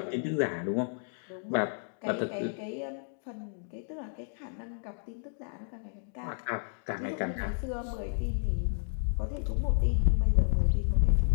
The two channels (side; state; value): right; silent; digital silence